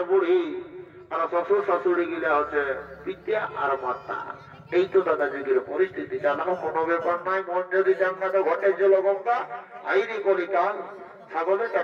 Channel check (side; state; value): both; identical; correlation 1.00